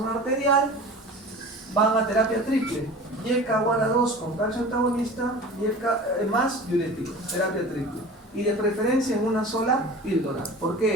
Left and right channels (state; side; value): normal; both; correlation 0.37